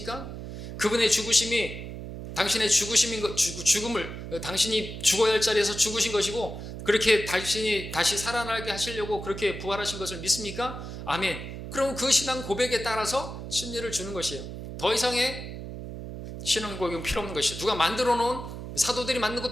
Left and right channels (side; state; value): right; noise; hum, 9 dB below the sound